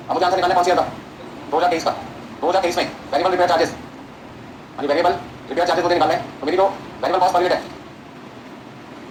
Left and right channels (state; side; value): identical; both; correlation 1.00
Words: अब मुझे आंसर निकालना कौन सी था, 2023 का। 2023 में वेरिएबल रिपेयर चार्जेस, यानी वेरिएबल रिपेयर चार्जेस मुझे निकालना है, तो मेरी जो वेरिएबल कॉस्ट पर यूनिट है